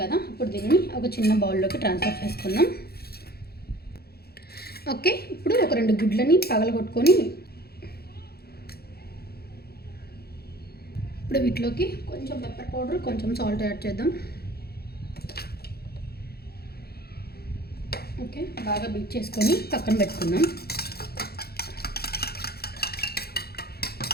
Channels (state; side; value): late; right; 0.46 ms